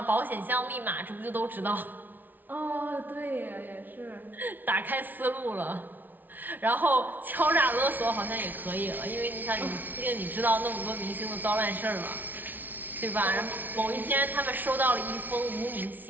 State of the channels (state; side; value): late; left; 0.086 ms